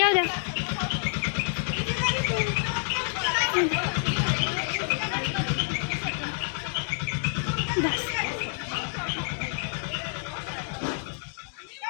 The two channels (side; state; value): right; silent; 59 dB below the other